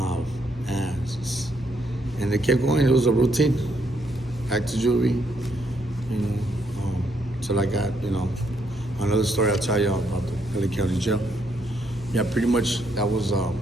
ass. And they kept going, it was a routine. Back to juvie, you know, till I got, you know, another story I'll tell you about the LA County Jail. Yeah, pretty much that was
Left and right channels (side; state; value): both; normal; correlation 0.74